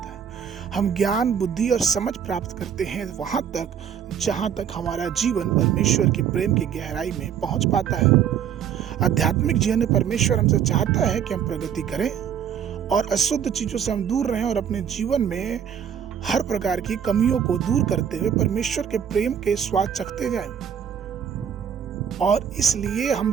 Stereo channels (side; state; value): left; quieter; 8.4 dB